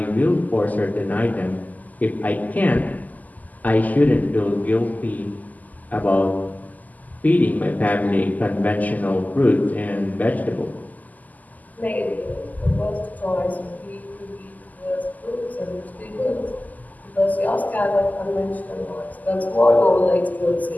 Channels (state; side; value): late; right; 0.080 ms